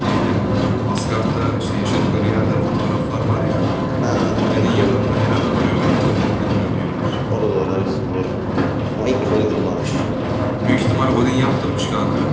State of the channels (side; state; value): both; identical; correlation 1.00